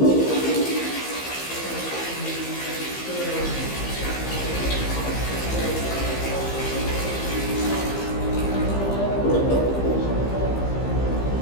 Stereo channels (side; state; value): right; late; 15 ms